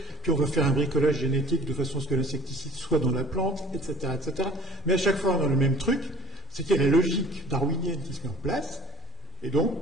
puis on va faire un bricolage génétique de façon à ce que l'insecticide soit dans la plante, etc., etc. Mais à chaque fois, on a le même truc, c'est qu'il y a la logique darwinienne qui se met en place, et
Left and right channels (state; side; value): normal; both; correlation 0.46